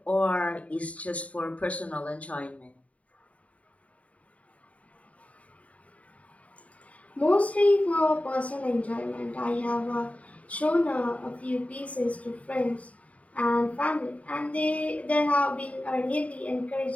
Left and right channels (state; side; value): late; right; 0.067 ms